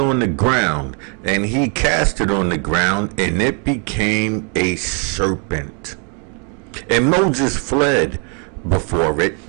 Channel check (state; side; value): quieter; left; 38.9 dB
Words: the ground. And he cast it on the ground, and it became a serpent. And Moses fled before it.